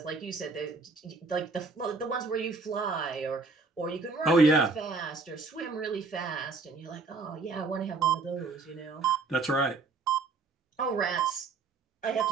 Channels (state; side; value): quieter; left; 4.1 dB